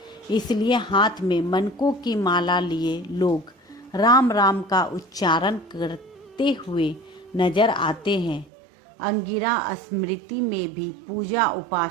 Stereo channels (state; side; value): drops out; left; at 8.5 s